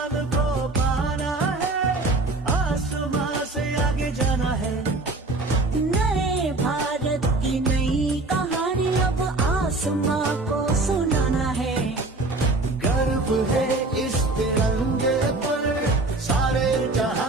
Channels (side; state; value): left; quieter; 3.1 dB